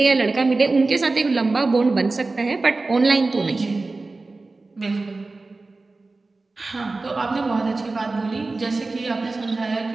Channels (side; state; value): left; quieter; 3.5 dB